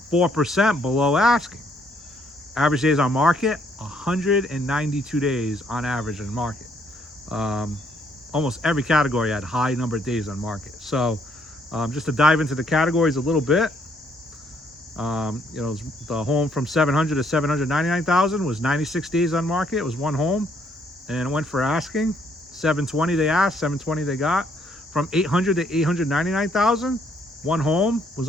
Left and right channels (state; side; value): normal; both; correlation 0.69